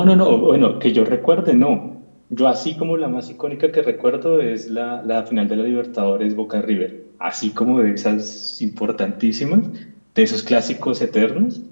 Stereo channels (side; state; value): both; inverted; correlation -1.00